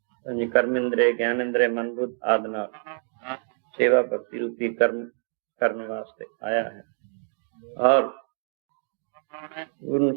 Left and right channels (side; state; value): left; silent; 60 dB below the other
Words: ਪੰਜ ਕਰਮ ਇੰਦਰੇ, ਗਿਆਨ ਇੰਦਰੇ, ਮਨ ਬੁੱਧ ਆਦਿ ਨਾਲ ਸੇਵਾ ਭਗਤੀ ਰੂਪੀ ਕਰਮ ਕਰਨ ਵਾਸਤੇ ਆਇਆ ਹੈ ਔਰ ਪੂਰਨ